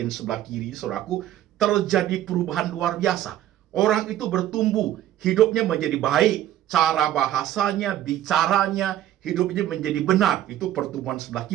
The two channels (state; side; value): quieter; left; 12.4 dB